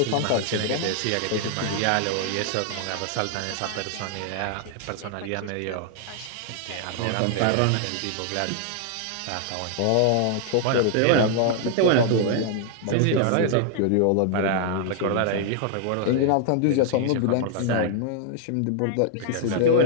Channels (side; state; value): both; different; correlation 0.00